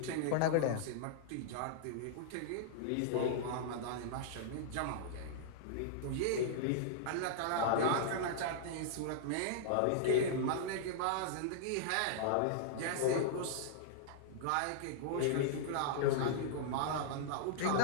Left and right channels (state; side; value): different; both; correlation -0.02